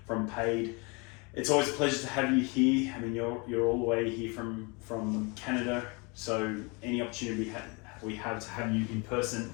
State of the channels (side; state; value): right; quieter; 29.8 dB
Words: Paiid. It's always a pleasure to have you here. I mean, you're all the way here from Canada, so any opportunity we have to have you in person